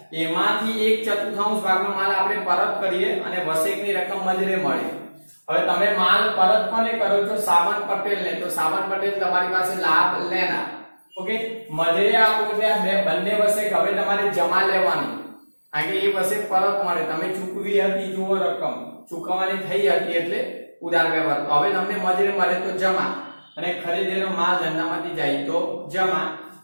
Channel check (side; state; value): both; inverted; correlation -1.00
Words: એમાંથી 1/4 ભાગનો માલ આપણે પરત કરીએ અને વસેકની રકમ મજરે મળી હવે તમે માલ પરત કોને કરો છો સાવન પટેલને તો સાવન પટેલ તમારી પાસે લાભ લેના ઓકે મજરે આપો એટલે બે બંને વસેક હવે તમારે જમા લેવાની કારણ કે એ વસેક પરત મળે તમે ચૂકવી હતી જુઓ રકમ ચૂકવવાની થઈ હતી એટલે ઉધાર વ્યવહાર હવે તમને મજરે મળે તો જમા અને ખરીદેલો માલ ધંધામાંથી જાય તો જમા